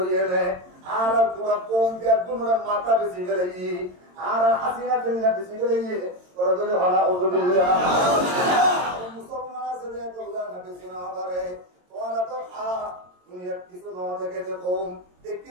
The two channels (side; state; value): left; late; 22 ms